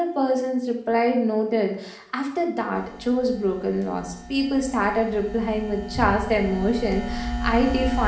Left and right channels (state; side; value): identical; both; correlation 1.00